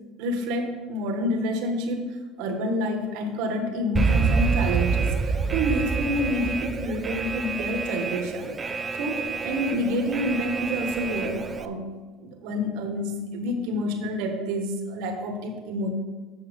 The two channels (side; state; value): both; normal; correlation 0.46